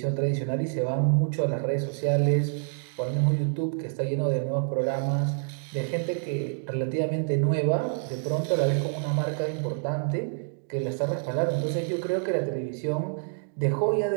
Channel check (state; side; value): silent; left; digital silence